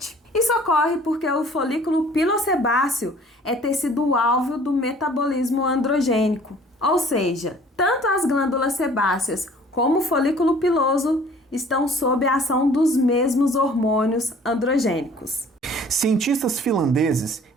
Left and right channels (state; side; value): normal; both; correlation 0.52